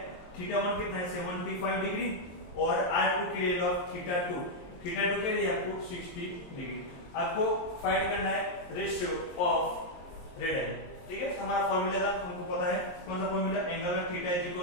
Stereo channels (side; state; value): right; late; 23 ms